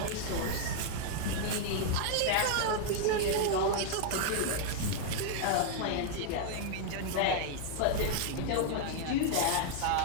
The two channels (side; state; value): both; different; correlation 0.00